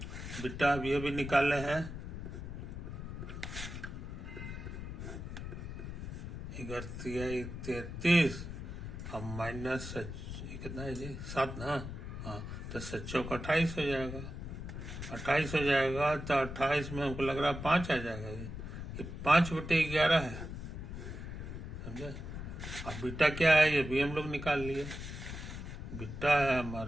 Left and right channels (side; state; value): left; noise; rumble, 8 dB below the sound